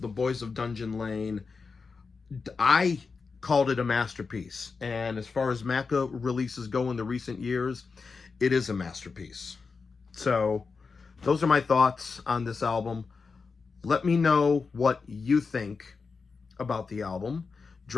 Boys of Dungeon Lane, I called it a masterpiece. And as far as Macca releases go in the recent years, it is a masterpiece. So, those are my thoughts on this album. Let me know what you think about the album.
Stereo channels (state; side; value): quieter; right; 4.8 dB